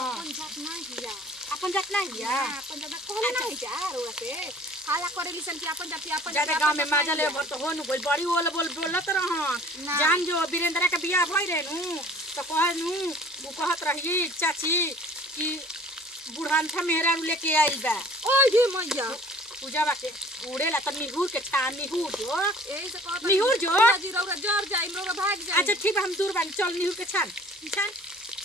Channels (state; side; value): normal; both; correlation 0.49